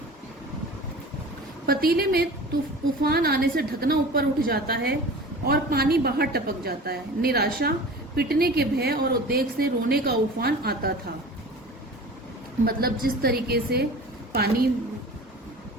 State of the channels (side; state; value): both; normal; correlation 0.38